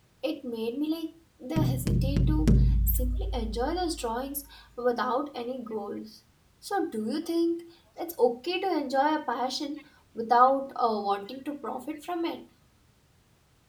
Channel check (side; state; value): both; identical; correlation 1.00